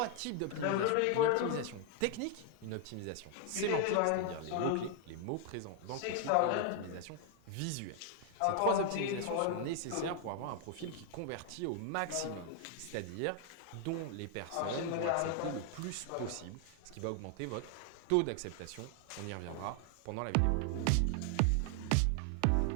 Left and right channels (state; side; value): different; both; correlation 0.00